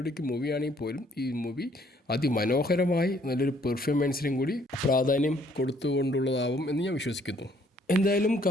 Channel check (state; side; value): normal; both; correlation 0.64